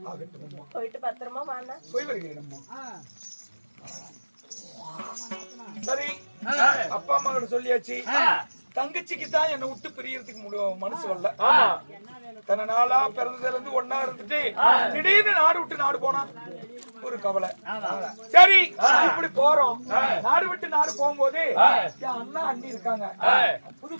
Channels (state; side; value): inverted; both; correlation -1.00